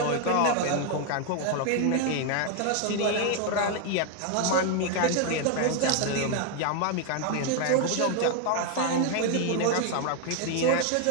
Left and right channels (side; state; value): both; different; correlation 0.01